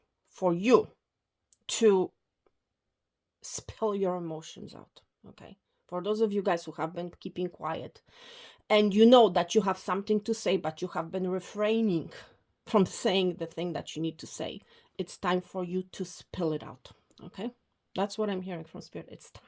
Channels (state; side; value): identical; both; correlation 1.00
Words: for you to spill your emotions out. Okay, for those of you guys who have been keeping quiet, and you know that you have something to say, but you have been refraining from saying the thing that you need to say, it's time for you to spill it out. Okay, that's what I'm hearing from Spirit. It's